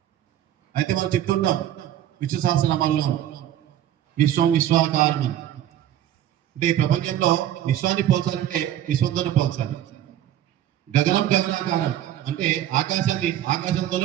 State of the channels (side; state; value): left; quieter; 11.7 dB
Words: అయితే మనం చెప్తుంటాం విశ్వ సహస్రనామాల్లో విశ్వం విశ్వాకారం అని. అంటే ఈ ప్రపంచంలో విశ్వాన్ని పోల్చాలంటే విశ్వంతోనే పోల్చాలి. గగనం గగనాకారం అంటే ఆకాశాన్ని